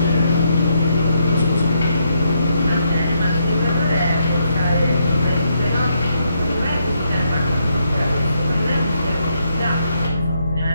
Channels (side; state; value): both; inverted; correlation -0.76